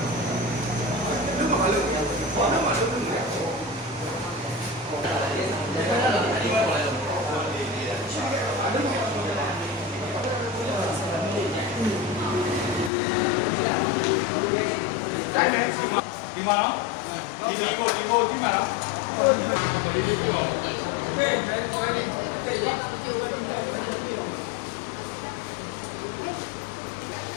ဒီမှာနော်ဒီကိုကြည့်မှာနော်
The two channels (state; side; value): drops out; right; at 12.9 s